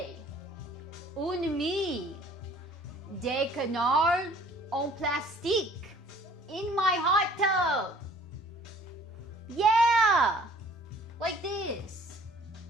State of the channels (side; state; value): both; normal; correlation 0.54